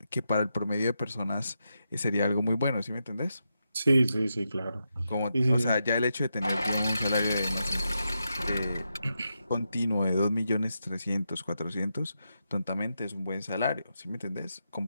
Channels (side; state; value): both; inverted; correlation -0.85